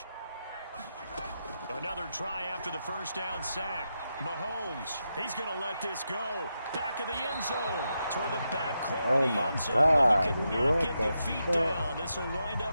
Another try after the first down sack. Mahomes, he's going to let this go. Back of the end zone. Toward the back corner of the end zone. God, but he could not get the feet down. This will wind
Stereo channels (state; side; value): inverted; both; correlation -0.86